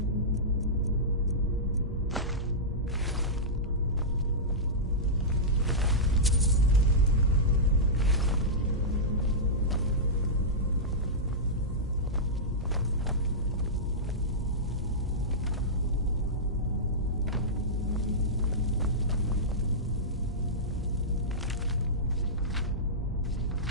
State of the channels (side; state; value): both; normal; correlation -0.13